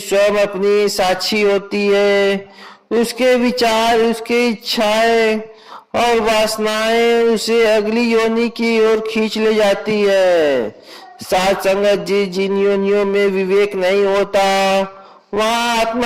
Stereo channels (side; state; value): both; identical; correlation 1.00